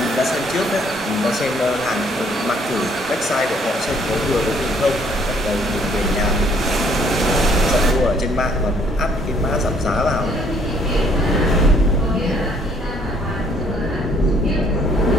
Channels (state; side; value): normal; both; correlation 0.63